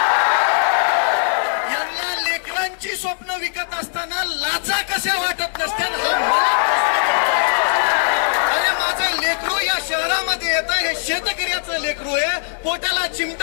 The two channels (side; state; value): right; silent; digital silence